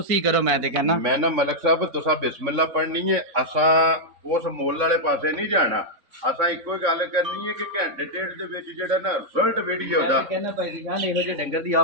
करो मैं ते कहना मैं ना मलक साहब तुसा बिस्मिल्लाह पढ़नी है असा उस मोल वाले पासे नहीं जाना असा इको गल करनी है कि घंटे डेढ़ दे विच जेड़ा ना रिजल्ट वीडियो दा कहना भाई दी शान ਇਹੋ ਜਿਹੇ ਡੰਗਰ ਦੀ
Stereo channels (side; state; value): left; late; 3.6 ms